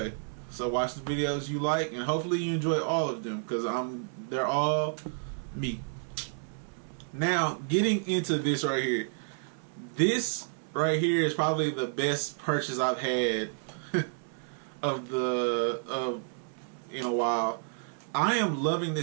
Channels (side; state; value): left; silent; 58 dB below the other